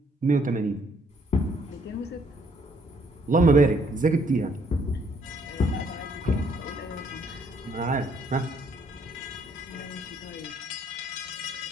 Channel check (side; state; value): both; normal; correlation 0.67